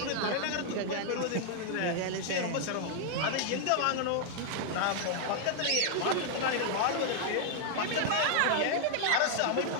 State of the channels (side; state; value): both; different; correlation 0.00